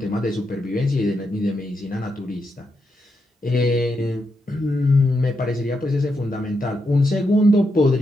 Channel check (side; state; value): both; normal; correlation 0.83